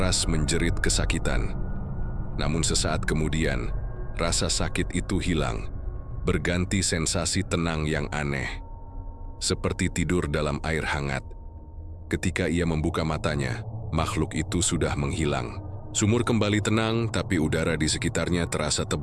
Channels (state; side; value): identical; both; correlation 1.00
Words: menjerit kesakitan. Namun sesaat kemudian, rasa sakit itu hilang, berganti sensasi tenang yang aneh. seperti tidur dalam air hangat. Ketika ia membuka matanya, makhluk itu sudah menghilang. Sumur kembali tenang, tapi udara di sekitarnya terasa